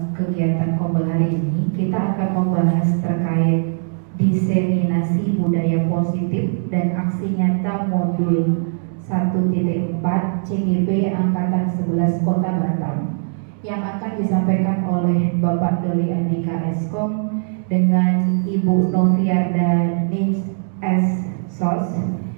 kegiatan Kombel hari ini kita akan membahas terkait diseminasi budaya positif dan aksi nyata modul 1.4 CGP Angkatan 11 Kota Batam yang akan disampaikan oleh Bapak Doli Andika Eskom dengan Ibu Noviarda Nis S. Sos,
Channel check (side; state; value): left; silent; digital silence